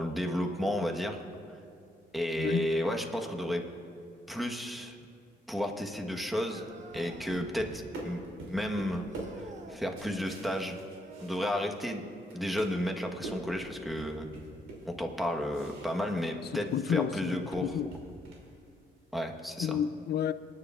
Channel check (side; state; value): both; normal; correlation 0.75